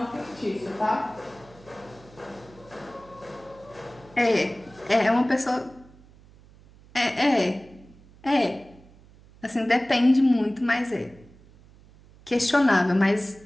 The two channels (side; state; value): right; noise; hum, 25 dB below the sound